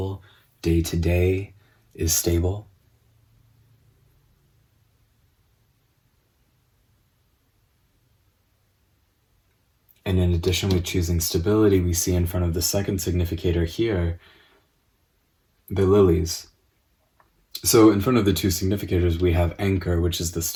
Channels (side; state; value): both; identical; correlation 1.00